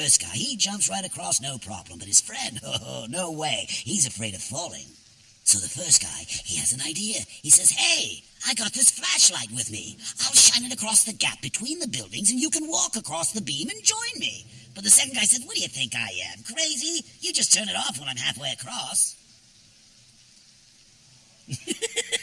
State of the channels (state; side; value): identical; both; correlation 1.00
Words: guy, he jumps right across, no problem. But his friend, oh, no way. He's afraid of falling. So the first guy, he has an idea. He says, hey, I got this flashlight with me. I'll shine it across the gap between the buildings, and you can walk across the beam and join me. But the second guy said, what do you think I am, crazy? You just turn it off when I'm halfway across.